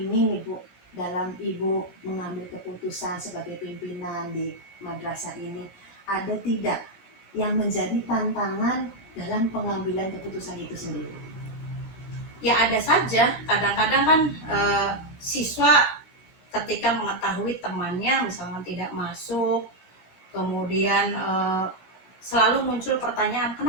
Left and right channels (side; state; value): right; late; 16 ms